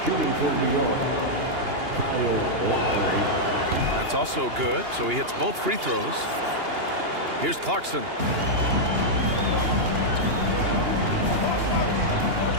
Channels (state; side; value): late; left; 2.8 ms